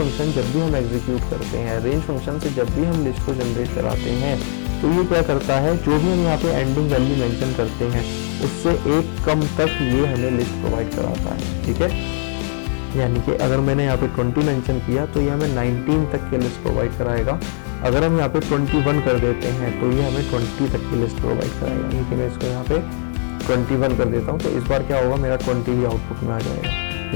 जब भी हम एग्जीक्यूट करते हैं, रेंज फंक्शन से जब भी हम लिस्ट को जनरेट कराते हैं, तो ये क्या करता है, जो भी हम यहाँ पे एंडिंग वैल्यू मेंशन करते हैं उससे एक कम तक ये हमें लिस्ट प्रोवाइड कराता है। ठीक है, यानी कि अगर मैंने यहाँ पे 20 मेंशन किया तो ये हमें 19 तक की लिस्ट प्रोवाइड कराएगा। अगर हम यहाँ पे 21 कर देते हैं तो ये हमें 20 तक की लिस्ट प्रोवाइड कराएगा। लेकिन मैं इसको यहाँ पे 21 कर देता हूँ, तो इस बार क्या होगा, मेरा 20 भी आउटपुट में आ जाएगा।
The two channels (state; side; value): silent; right; 62 dB below the other